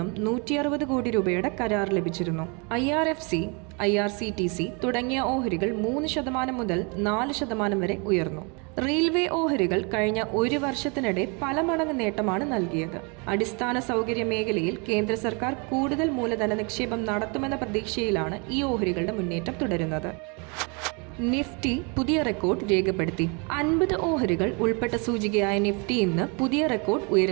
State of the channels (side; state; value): left; quieter; 32.8 dB